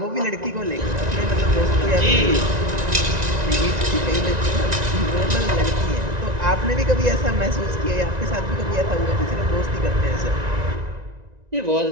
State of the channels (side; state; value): left; late; 1.9 ms